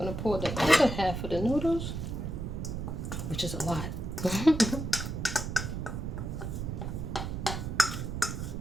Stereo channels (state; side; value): noise; right; rumble, 4 dB below the sound